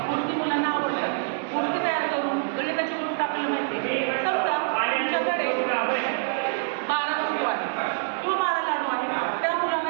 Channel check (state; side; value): silent; left; digital silence